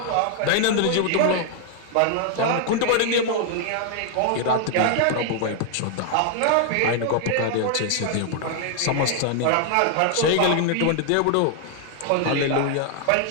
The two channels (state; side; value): different; both; correlation 0.00